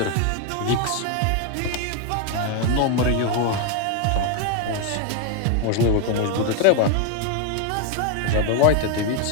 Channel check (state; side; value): different; both; correlation 0.01